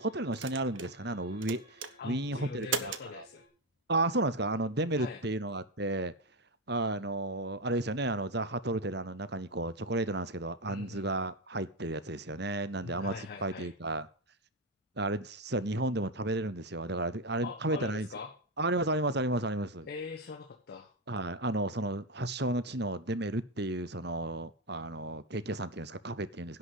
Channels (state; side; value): normal; both; correlation 0.10